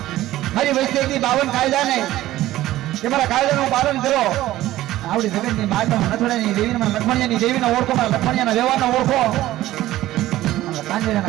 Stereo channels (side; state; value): left; quieter; 15.2 dB